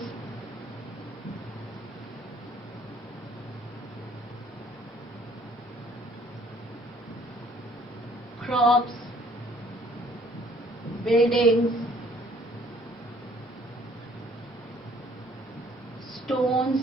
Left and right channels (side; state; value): both; normal; correlation 0.60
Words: crops, buildings, stones